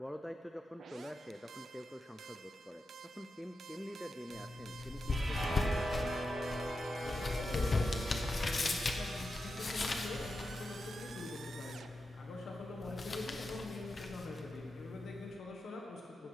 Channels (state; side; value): normal; both; correlation 0.89